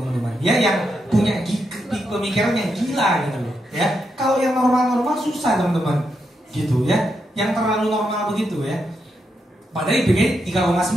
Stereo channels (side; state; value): both; normal; correlation 0.83